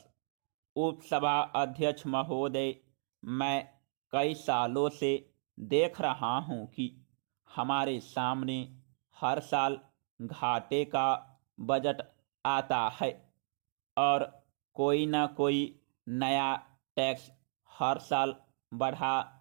उपसभा अध्यक्ष महोदय, मैं कई सालों से देख रहा हूं कि हमारे सामने हर साल घाटे का बजट आता है और कोई न कोई नया टैक्स हर साल बढ़ा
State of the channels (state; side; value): silent; left; digital silence